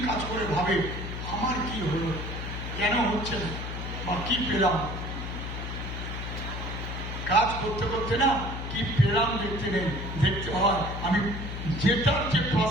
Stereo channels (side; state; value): left; noise; hum, 6 dB below the sound